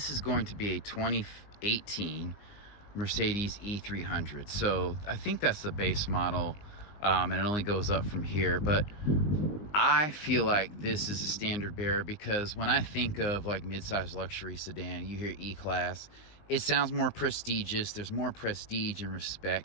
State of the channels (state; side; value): late; right; 19 ms